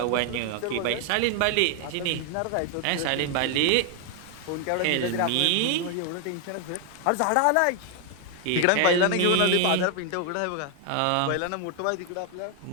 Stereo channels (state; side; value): different; both; correlation 0.00